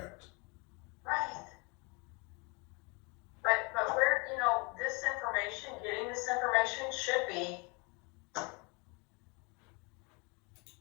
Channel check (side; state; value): right; quieter; 30.4 dB